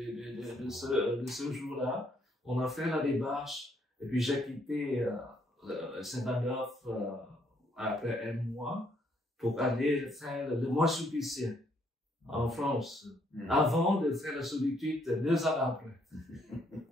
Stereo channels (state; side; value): normal; both; correlation 0.70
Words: ce jour-là, on a fait la démarche. Et puis, j'ai quitté Saint-Adolphe après un mois pour aller faire le mois sulpicien en France, avant de faire la solitude 2 ans après.